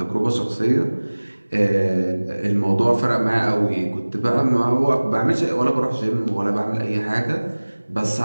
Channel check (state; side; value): inverted; both; correlation -1.00